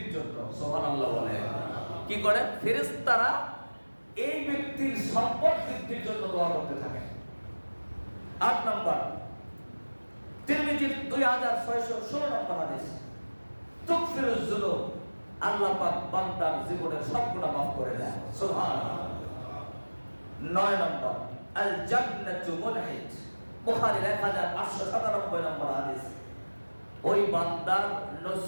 জন্য। সুবহানাল্লাহ বলে কি করেন? ফেরেশতারা এই ব্যক্তির সম্পদ বৃদ্ধির জন্য দোয়া করতে থাকেন। 8 নাম্বার তিরমিজির 2616 নম্বর হাদিস, তুগফিরুজ যুনুব, আল্লাহ পাক বান্দার জীবনের সব গুনাহ মাফ করে দেয়। সুবহানাল্লাহ। 9 নম্বর আল জান্নাতু মুনহিত, বুখারীর 1897 নম্বর হাদিস, ওই বান্দার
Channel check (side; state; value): both; inverted; correlation -1.00